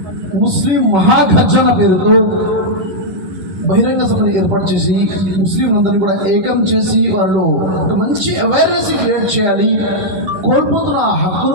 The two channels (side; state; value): left; late; 11 ms